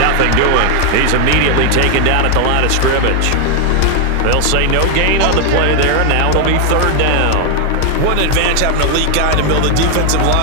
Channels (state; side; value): different; both; correlation 0.00